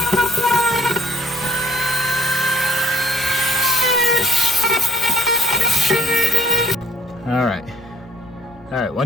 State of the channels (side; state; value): both; normal; correlation 0.63